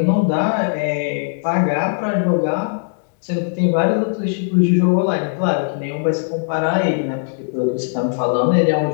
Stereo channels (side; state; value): right; silent; digital silence